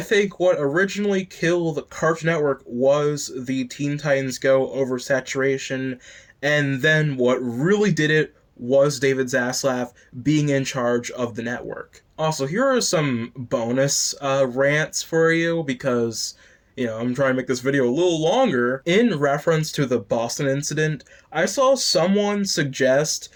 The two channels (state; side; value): identical; both; correlation 1.00